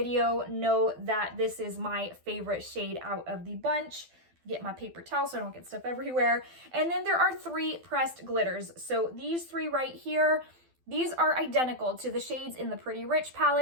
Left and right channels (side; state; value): left; late; 12 ms